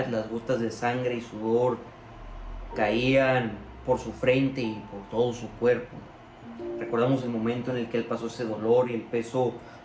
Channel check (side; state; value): both; identical; correlation 1.00